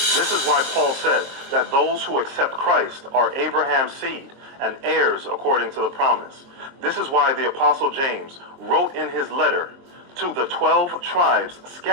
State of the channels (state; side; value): late; left; 23 ms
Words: is why Paul said that those who accept Christ are Abraham's seed and heirs according to the promise. This is why the Apostle James wrote in his letter to the 12 tribes